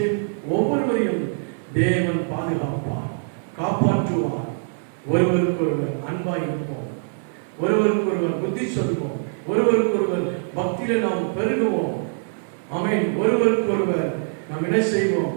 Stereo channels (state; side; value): silent; left; digital silence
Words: ஒவ்வொருவரையும் தேவன் பாதுகாப்பார், காப்பாற்றுவார். ஒருவருக்கொருவர் அன்பாய் இருப்போம், ஒருவருக்கொருவர் புத்தி சொல்வோம், ஒருவருக்கொருவர் பக்தியில நாம் பெருகுவோம். ஆமென். ஒருவருக்கொருவர் நாம் என்ன செய்வோம்?